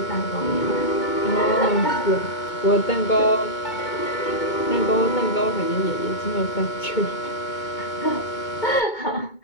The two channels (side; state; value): right; late; 2.2 ms